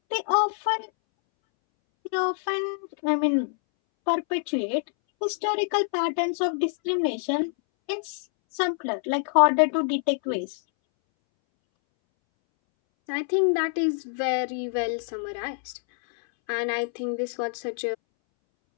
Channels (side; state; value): right; silent; 61 dB below the other